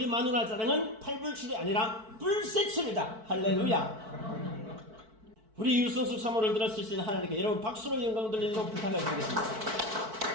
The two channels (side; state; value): left; late; 4.5 ms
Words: 마누라 자랑은 팔불출이 아니라 불세출이다. 할렐루야. 우리 유성수 사모를 들었으신 하나님께 여러분 박수로 영광 돌리도록 부탁을 드리겠습니다.